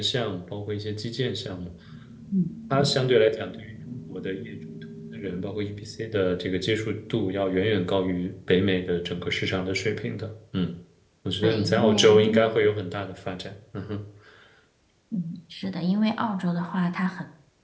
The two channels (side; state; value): both; identical; correlation 1.00